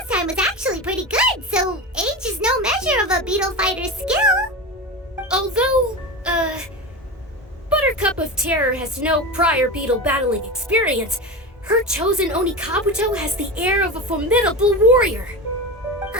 time was actually pretty good, so age is no measure of a beetle fighter's skill. Although, Buttercup of Terror has no prior beetle battling experience, her chosen Onikabuto has the air of a formidable warrior.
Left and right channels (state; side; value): normal; both; correlation 0.24